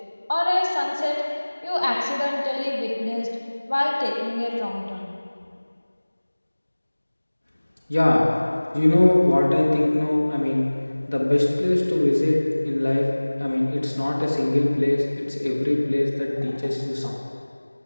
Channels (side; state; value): both; inverted; correlation -1.00